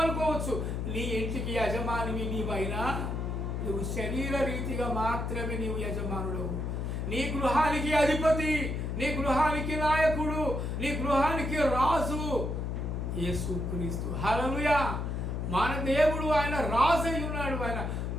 అనుకోవచ్చు. నీ ఇంటికి యజమానివి నీవైనా నువ్వు శరీర రీతిగా మాత్రమే నీవు యజమానుడు. నీ గృహానికి అధిపతి, నీ గృహానికి నాయకుడు, నీ గృహానికి రాజు యేసుక్రీస్తు. హల్లెలూయా. మన దేవుడు ఆయన రాజు అయి ఉన్నాడు. ఆయన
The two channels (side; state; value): left; noise; hum, 2 dB below the sound